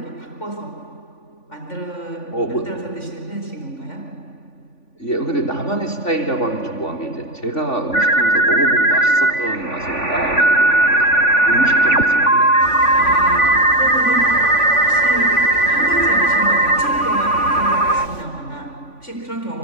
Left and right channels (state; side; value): late; right; 3.5 ms